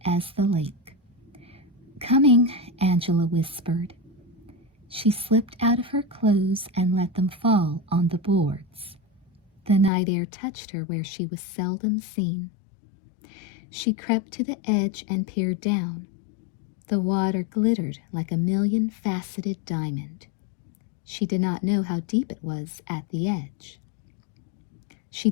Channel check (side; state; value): right; drops out; at 9.9 s